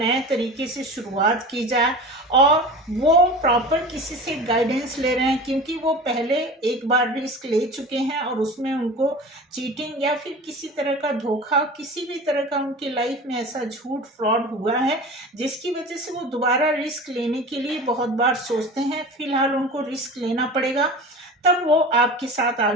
तरीके से शुरुआत की जाए, और वो प्रॉपर किसी से गाइडेंस ले रहे हैं, क्योंकि वो पहले एक बार रिस्क ले चुके हैं और उसमें उनको चीटिंग या फिर किसी तरह का धोखा, किसी भी तरह का उनकी लाइफ में ऐसा झूठ फ्रॉड हुआ है जिसकी वजह से वो दोबारा रिस्क लेने के लिए बहुत बार सोचते हैं। फिलहाल उनको रिस्क लेना पड़ेगा, तब वो आपके साथ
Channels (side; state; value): both; normal; correlation 0.34